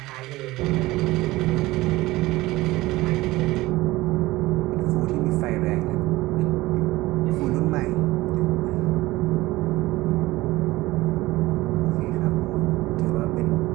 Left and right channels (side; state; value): left; quieter; 18.9 dB